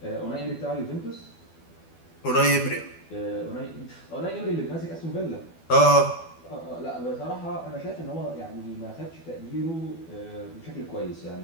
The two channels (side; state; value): right; late; 12 ms